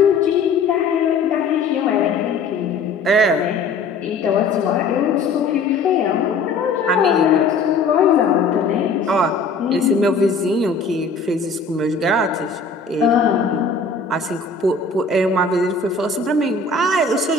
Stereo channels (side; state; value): right; quieter; 4.0 dB